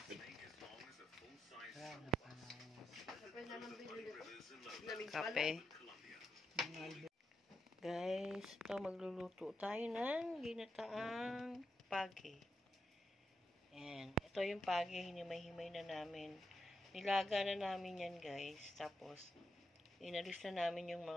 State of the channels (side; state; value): both; normal; correlation 0.84